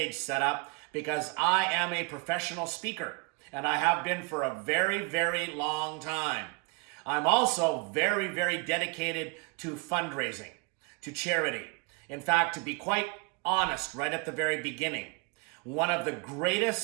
set up because I am a professional speaker, and I have been for a very, very long time. I'm also very, very dedicated to fundraising, to charity. In fact, to be quite honest, right at the very beginning, one of the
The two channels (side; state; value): left; quieter; 32.7 dB